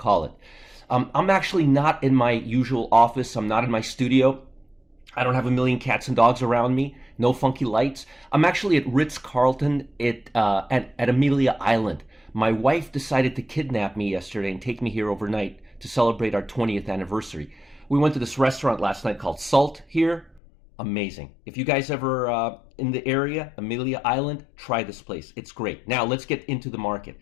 it. I'm actually not in my usual office. I'm not in my studio. I don't have a million cats and dogs around me. No funky lights. I'm actually at Ritz-Carlton at Amelia Island. My wife decided to kidnap me yesterday and take me here overnight to celebrate our 20th anniversary. We went to this restaurant last night called Salt here. Amazing. If you guys ever in the area, Amelia Island, try this place. It's great. Now let's get into the market.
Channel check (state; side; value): drops out; right; at 20.4 s